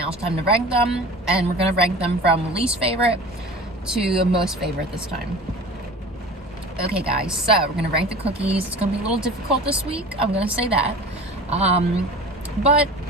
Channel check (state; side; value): normal; both; correlation 0.39